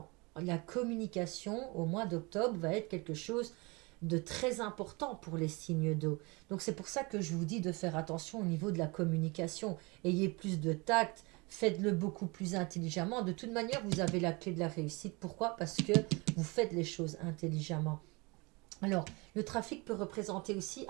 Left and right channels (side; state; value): left; quieter; 26.9 dB